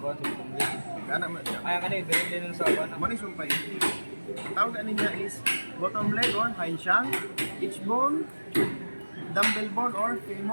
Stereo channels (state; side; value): inverted; both; correlation -1.00